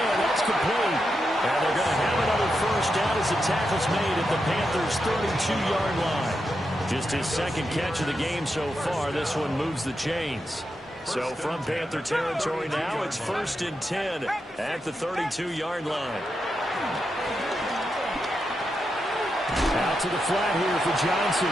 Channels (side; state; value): both; normal; correlation 0.86